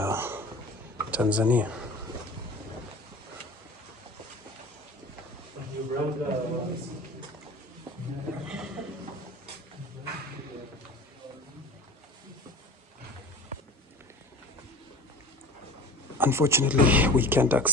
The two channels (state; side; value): normal; both; correlation 0.38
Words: Tanzania. Unfortunately, we can't